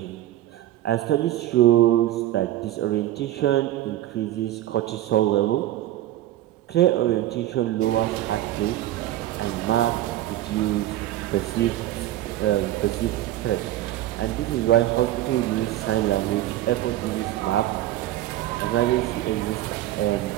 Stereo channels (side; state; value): left; quieter; 14.1 dB